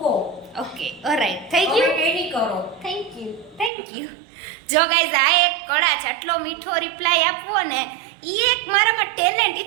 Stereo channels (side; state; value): left; drops out; at 3.7 s